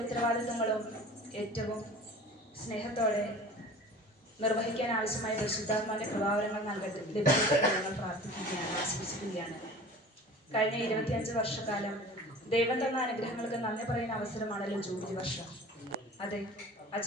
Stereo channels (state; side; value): normal; both; correlation 0.41